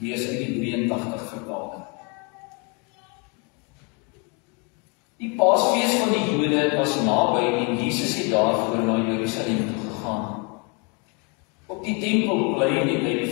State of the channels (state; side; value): quieter; right; 31.8 dB